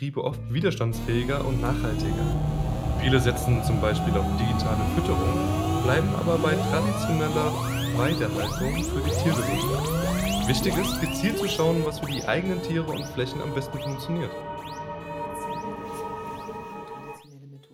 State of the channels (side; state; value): both; identical; correlation 1.00